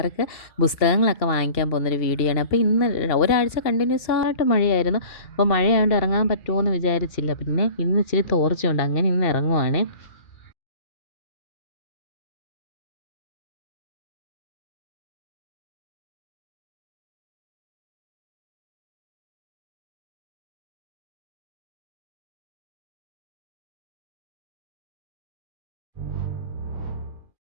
പുസ്തകങ്ങളൊക്കെ വാങ്ങിക്കാൻ പോകുന്നൊരു വീഡിയോ ആണ്. അപ്പോൾ ഇന്ന് ഒരാഴ്ച കണ്ടിന്യൂസ് ആയിട്ട് മഴയായിരുന്നു. അപ്പോൾ മഴയായതുകൊണ്ട് ഇറങ്ങാൻ പറ്റുമോ എന്ന് വിചാരിച്ചില്ല. പിന്നെ ഇന്ന് ഇച്ചിരി തോർച്ചയുണ്ട്, അങ്ങനെ ഇന്ന് ഇറങ്ങുവാണേ.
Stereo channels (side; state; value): right; late; 2.7 ms